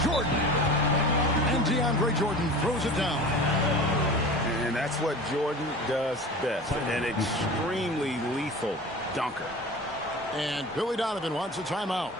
Jordan. And DeAndre Jordan throws it down. And that's what Jordan does best. An extremely lethal dunker. And Billy Donovan wants a timeout.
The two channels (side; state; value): both; normal; correlation 0.36